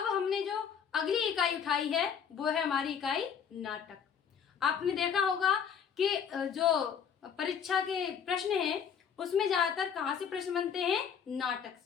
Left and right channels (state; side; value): quieter; right; 7.4 dB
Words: हमने जो अगली इकाई उठाई है वो है हमारी इकाई नाटक। आपने देखा होगा कि जो परीक्षा के प्रश्न हैं उसमें ज्यादातर कहाँ से प्रश्न बनते हैं? नाटक